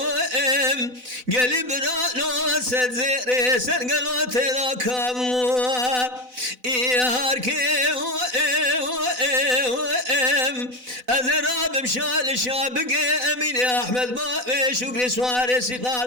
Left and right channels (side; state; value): left; late; 4.0 ms